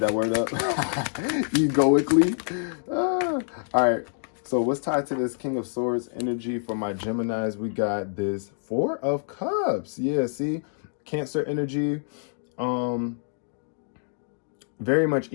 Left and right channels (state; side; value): silent; right; digital silence